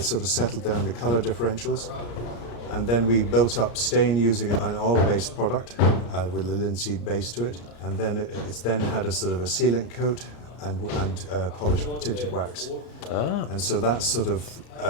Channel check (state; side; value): late; right; 34 ms